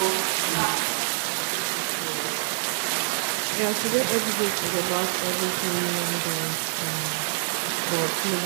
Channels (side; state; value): left; silent; digital silence